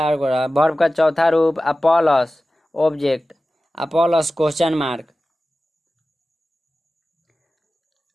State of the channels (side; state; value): both; normal; correlation 0.95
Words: गोरा वर्ब का चौथा रूप plus object plus question mark.